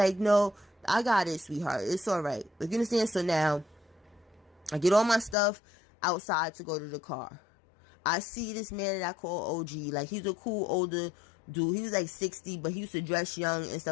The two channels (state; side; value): drops out; right; at 5.4 s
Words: no, I got it, sweetheart. It's all right. Like, you understand? So now, I get all my stuff outside to go to the car. I see this man that I call OG. Like, he's a cool older dude. He was like 60, but he used to dress young and